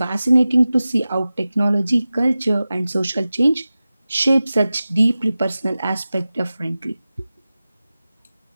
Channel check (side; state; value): both; inverted; correlation -0.96